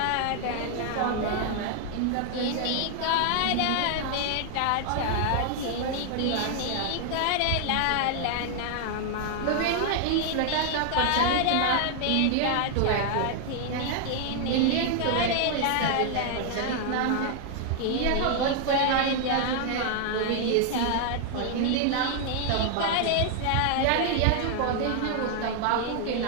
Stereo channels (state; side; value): different; both; correlation 0.00